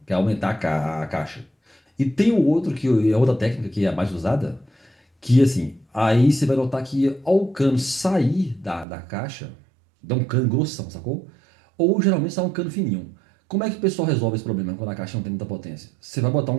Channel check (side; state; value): left; drops out; at 8.8 s